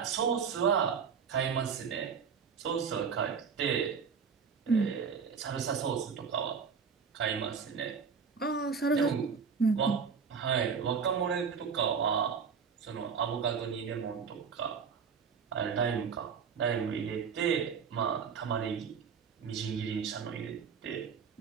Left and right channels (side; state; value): left; quieter; 6.2 dB